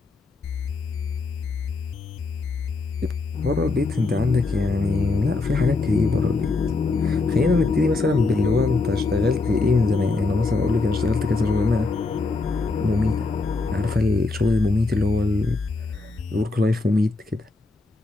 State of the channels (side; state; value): right; quieter; 3.5 dB